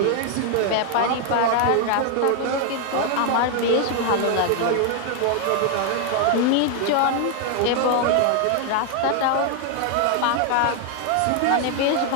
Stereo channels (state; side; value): different; both; correlation 0.00